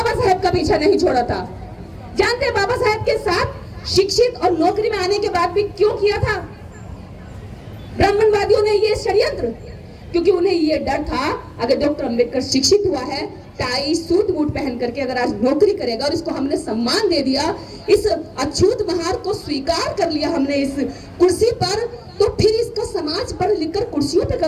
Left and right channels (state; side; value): identical; both; correlation 1.00